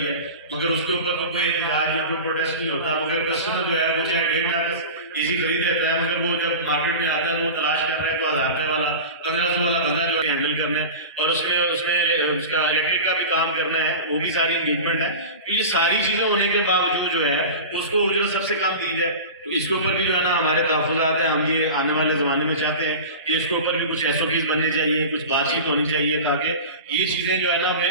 है, मगर उसके ऊपर तो कोई इलाज या कोई प्रोटेस्ट नहीं होता, मगर कस्टमर जो है वो चाहे 1.5 लाख एसी खरीद लेता है, मगर वो जब मार्केट में आता है वो तलाश कर रहा है जो 1000 रुपये वाला 1500 वाला बंदा जो है हैंडल करना है और उसमें उसमें उसका इलेक्ट्रिक का भी काम करना है, वो भी सारी इंगेजमेंट है। तो ये सारी चीज़ें होने के बावजूद जो है उसको उजरत सबसे कम दी जाए, तो इसके ऊपर भी जो है ना हमारे तहफ़्फ़ुज़ात हैं, हम ये आने वाले ज़माने में चाहते हैं कि इसके ऊपर भी कुछ एसओपीज़ बननी चाहिए, कुछ बातचीत होनी चाहिए ताकि ये चीज़ें जो है ना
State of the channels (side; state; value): both; inverted; correlation -0.31